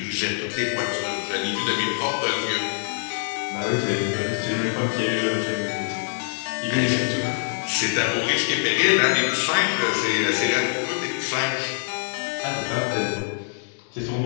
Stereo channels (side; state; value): right; silent; digital silence